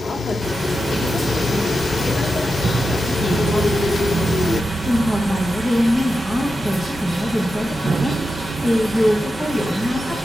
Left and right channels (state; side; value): normal; both; correlation 0.90